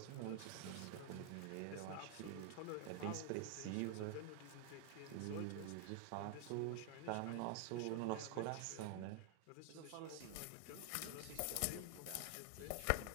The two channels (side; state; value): both; different; correlation 0.00